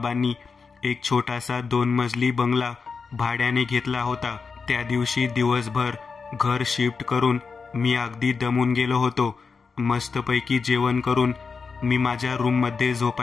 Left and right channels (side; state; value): right; quieter; 5.1 dB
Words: एक छोटासा 2 मजली बंगला भाड्याने घेतला होता. त्या दिवशी दिवसभर घर शिफ्ट करून मी अगदी दमून गेलो होतो. मस्तपैकी जेवण करून मी माझ्या रूममध्ये